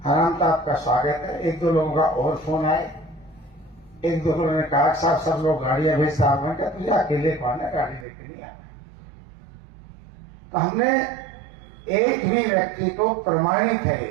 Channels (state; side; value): drops out; left; at 8.1 s